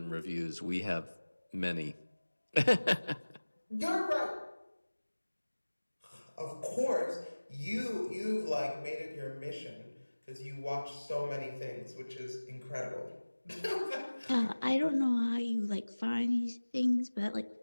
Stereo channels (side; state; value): both; inverted; correlation -1.00